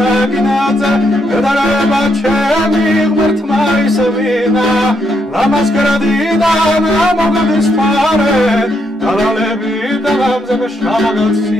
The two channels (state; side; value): normal; both; correlation 0.76